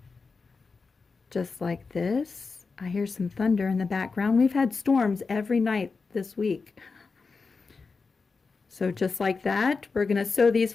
just like this. I hear some thunder in the background. We've had storms every night this week. So just like that, we're going to sew these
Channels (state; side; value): quieter; right; 4.5 dB